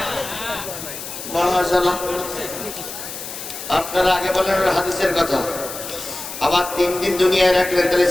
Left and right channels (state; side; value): noise; left; hiss, 9 dB below the sound